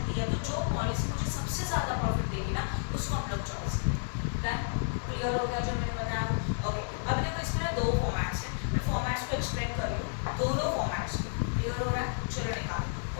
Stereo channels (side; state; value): right; silent; 57 dB below the other